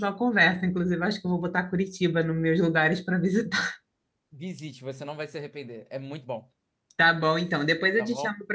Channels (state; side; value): identical; both; correlation 1.00